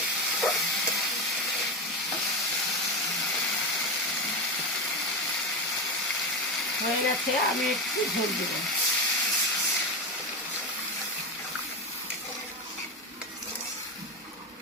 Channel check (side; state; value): both; normal; correlation 0.16